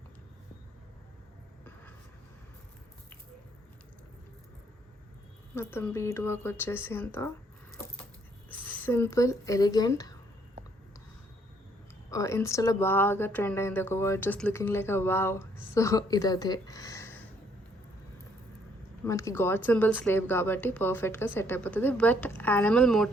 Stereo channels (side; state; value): both; normal; correlation 0.66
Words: మొత్తం బీడ్ వర్క్ వచ్చేసి అంత సింపుల్ ఎలిగెంట్. ఇన్స్టాలో బాగా ట్రెండ్ అయింది ఒక word, just looking like a wow. So ఇదే మనకి గాడ్ సింబల్ స్లేవ్ కాబట్టి పర్ఫెక్ట్గా సెట్ అయిపోతుంది. బట్ యానిమల్